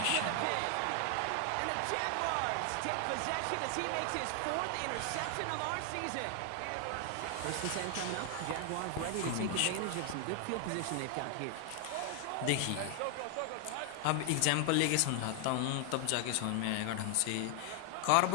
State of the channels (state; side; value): different; both; correlation 0.00